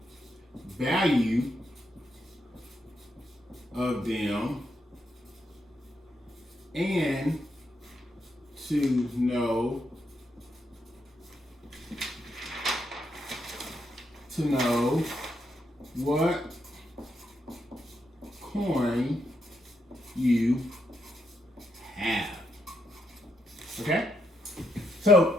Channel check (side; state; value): both; normal; correlation 0.80